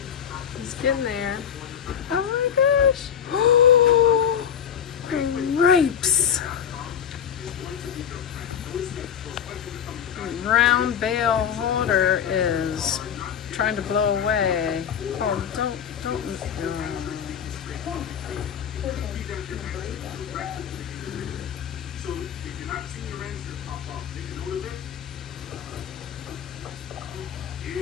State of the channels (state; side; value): quieter; right; 8.5 dB